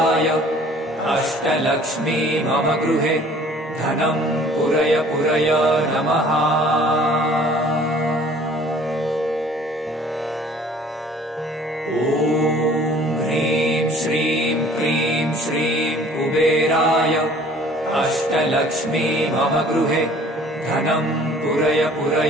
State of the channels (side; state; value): both; normal; correlation 0.52